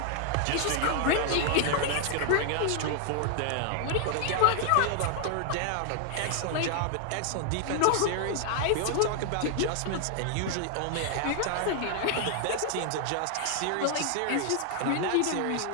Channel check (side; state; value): both; different; correlation 0.00